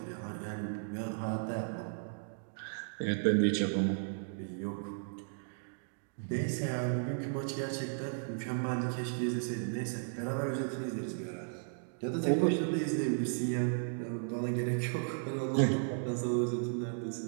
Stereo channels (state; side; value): silent; left; digital silence